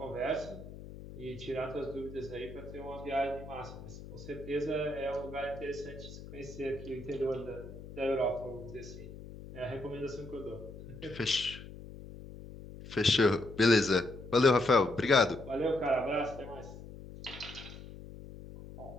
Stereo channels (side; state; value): left; noise; hum, 14 dB below the sound